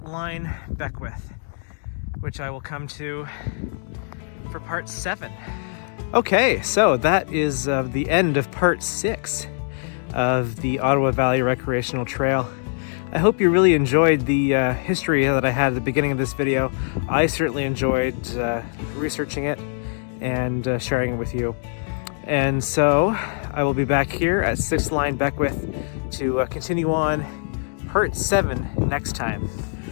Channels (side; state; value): right; silent; digital silence